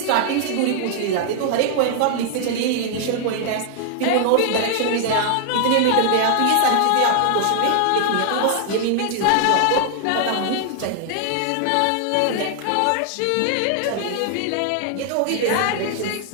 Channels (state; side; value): different; both; correlation 0.00